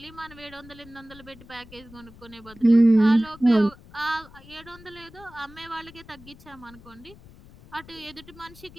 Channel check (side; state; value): left; noise; rumble, 21 dB below the sound